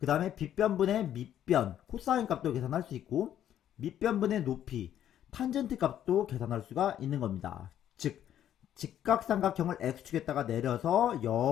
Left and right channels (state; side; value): quieter; right; 10.9 dB